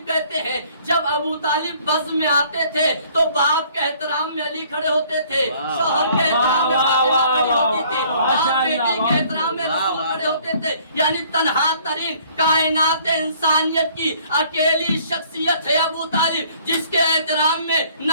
کہتے ہیں. جب ابو طالب بزم میں آتے تھے تو باپ کے احترام میں علی کھڑے ہوتے تھے، شوہر کے احترام میں فاطمہ کھڑی ہوتی تھی، باپ بیٹی کے احترام میں رسول کھڑے ہوتے تھے. یعنی تنہا ترین کائنات انسانیت کی اکیلی شخصیت ہے ابو طالب، جس کے احترام میں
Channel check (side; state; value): both; inverted; correlation -0.58